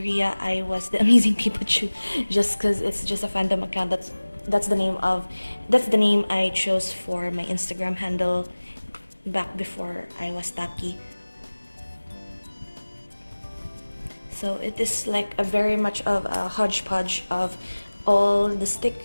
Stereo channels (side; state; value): both; inverted; correlation -1.00